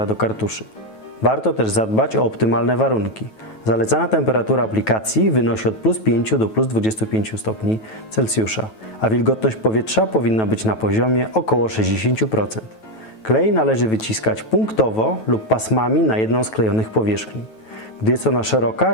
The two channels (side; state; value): right; late; 9.2 ms